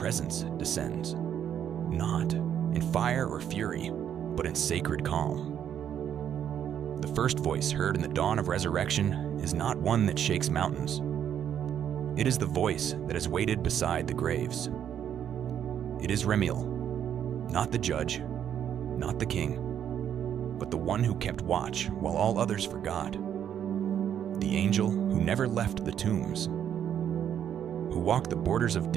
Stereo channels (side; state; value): left; quieter; 9.4 dB